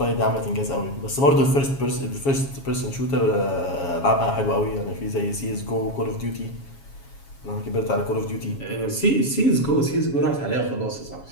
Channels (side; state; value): right; late; 7.2 ms